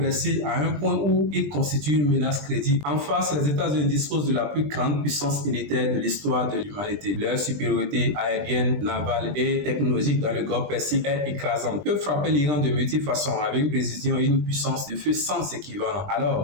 à un point où il constitue une menace crédible. En face, les États-Unis disposent de la plus grande puissance militaire de l'histoire de l'humanité. Leur supériorité aérienne, navale et technologique dans le Golfe Persique est écrasante. Ils peuvent frapper l'Iran de multiples façons avec une précision et une puissance de feu sans équivalent.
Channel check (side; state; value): left; late; 20 ms